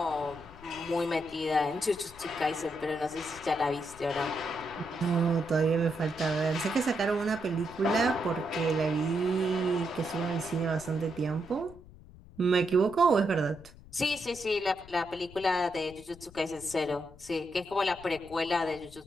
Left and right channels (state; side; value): noise; left; rumble, 20 dB below the sound